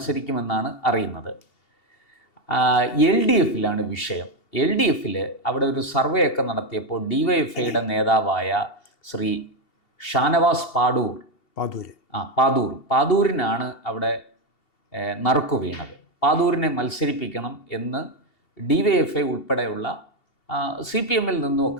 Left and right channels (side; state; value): right; late; 2.7 ms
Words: അറിയുന്നത്. LDF വിഷയം. LDF അവിടെ ഒരു സർവേ ഒക്കെ നടത്തിയപ്പോൾ DYFIയുടെ നേതാവായ ശ്രീ ഷാനവാസ് പാദൂരിനാണ് അവിടെ നറുക്കു വീണത്. പാദൂരിനെ മത്സരിപ്പിക്കണം എന്ന് DYFI ഉൾപ്പെടെയുള്ള CPMൽ